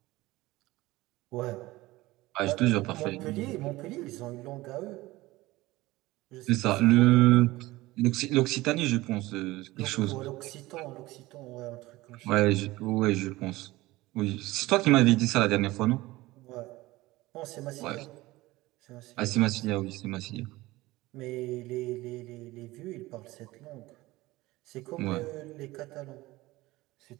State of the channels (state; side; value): quieter; left; 19.2 dB